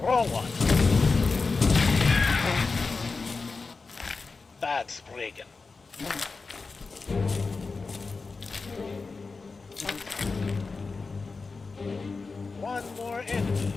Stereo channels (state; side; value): quieter; right; 4.2 dB